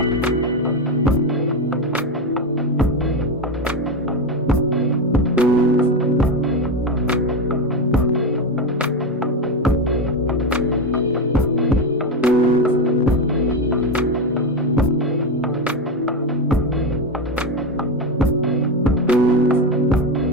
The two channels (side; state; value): both; normal; correlation 0.13